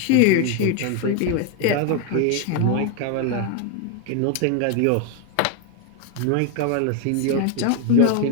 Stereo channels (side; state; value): both; different; correlation 0.01